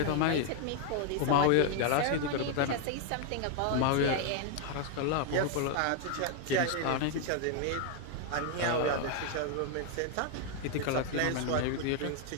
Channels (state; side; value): different; both; correlation 0.00